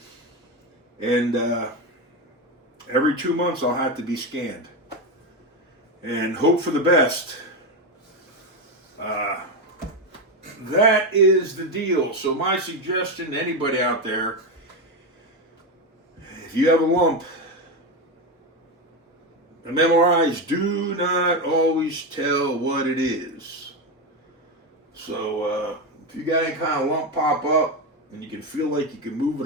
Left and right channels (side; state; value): both; normal; correlation 0.13